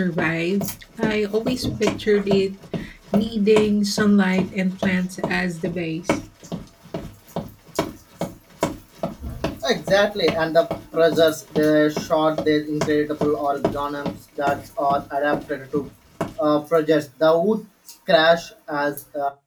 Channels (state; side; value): identical; both; correlation 1.00